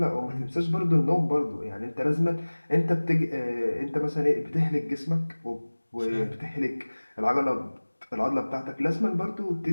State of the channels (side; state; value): both; inverted; correlation -1.00